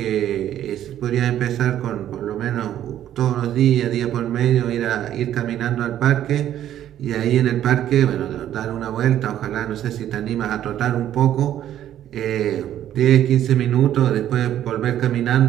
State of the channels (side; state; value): left; quieter; 11.5 dB